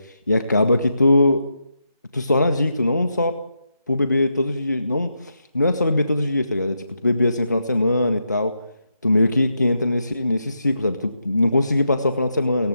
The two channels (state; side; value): inverted; both; correlation -0.83